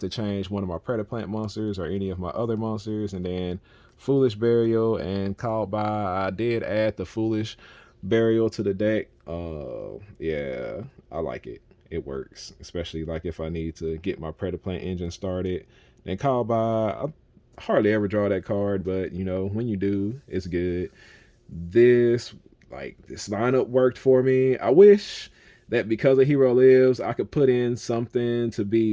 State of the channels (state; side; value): identical; both; correlation 1.00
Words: to change one of my Predaplant monsters or any of my other monsters. And then Foolish Burial and Called By. I did add the Foolish Burial to the deck. Yeah, I like it. It works, especially like if I need to get my Predaplant engine started. And Called By, I hardly ever draw that card, but you know, when you do, it's good. This lineup worked for me. I wish that because a hero lives, I could put in something to